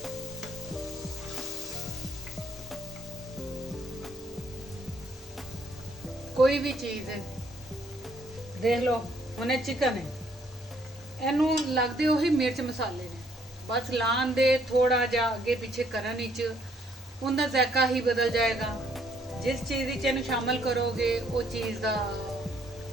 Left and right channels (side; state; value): both; normal; correlation 0.67